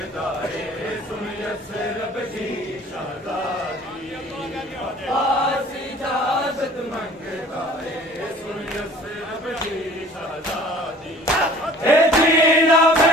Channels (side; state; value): both; normal; correlation 0.49